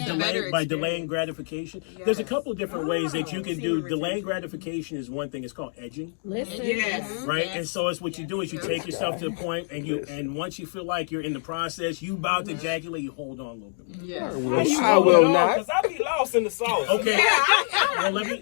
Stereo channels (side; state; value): right; silent; digital silence